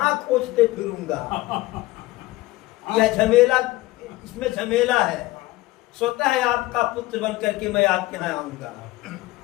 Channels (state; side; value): quieter; right; 18.9 dB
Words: खोजते फिरूंगा। यह झमेला, इसमें झमेला है, स्वतः है आपका पुत्र बन करके मैं आपके यहाँ आऊंगा।